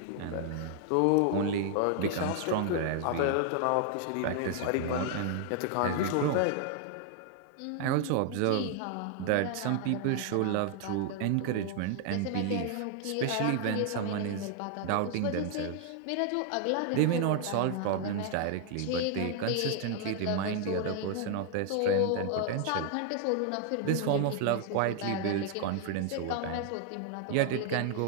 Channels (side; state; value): both; different; correlation 0.00